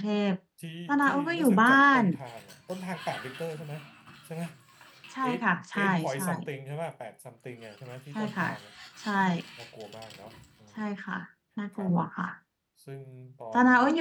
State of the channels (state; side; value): identical; both; correlation 1.00